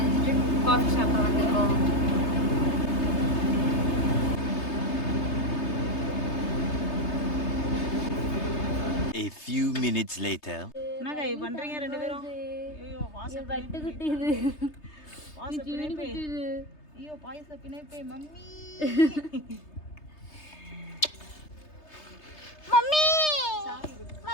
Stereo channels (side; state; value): right; late; 3.3 ms